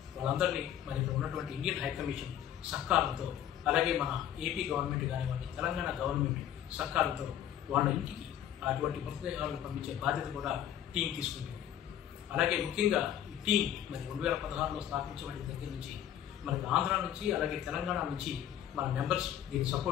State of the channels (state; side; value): quieter; right; 10.7 dB